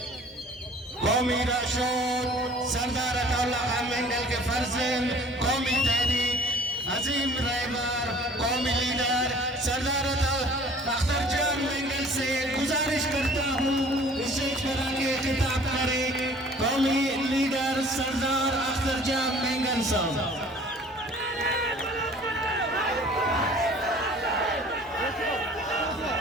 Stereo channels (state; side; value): normal; both; correlation 0.50